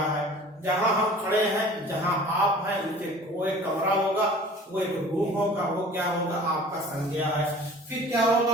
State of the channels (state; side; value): normal; both; correlation 0.45